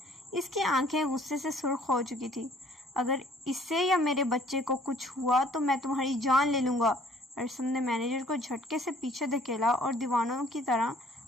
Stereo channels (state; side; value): normal; both; correlation 0.57